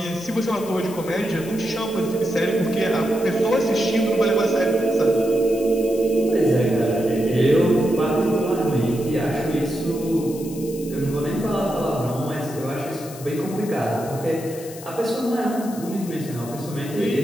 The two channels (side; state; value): left; noise; hiss, 16 dB below the sound